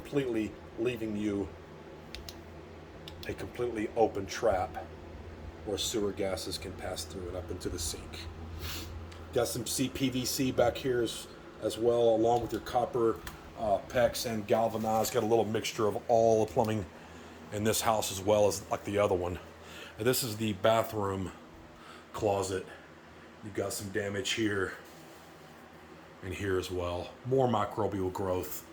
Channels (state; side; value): identical; both; correlation 1.00